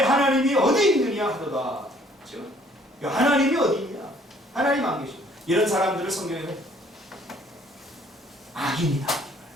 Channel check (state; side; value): normal; both; correlation 0.60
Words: 하나님이 어디 있느냐 하도다. 그렇죠? 하나님이 어디 있냐? 하나님 안 계셔. 이런 사람들을 성경에는 악인이다.